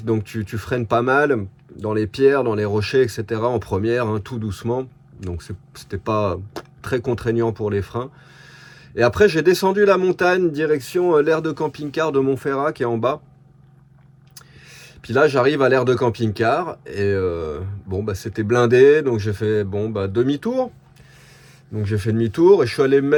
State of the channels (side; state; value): both; identical; correlation 1.00